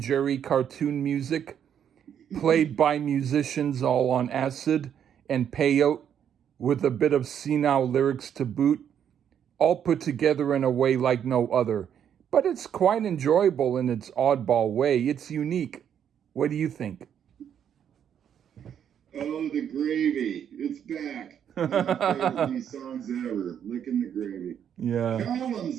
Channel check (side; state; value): left; quieter; 8.9 dB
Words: Jerry cartoon music, played by musicians all on acid and peyote, with a bit of senile lyrics to boot, all put together in a way like no other. But it's quite enjoyable in its oddball way. It's unique. What do you think? Oh, the gravy. It's back. One of my favorite these songs ever. Licking the gravy. Yeah.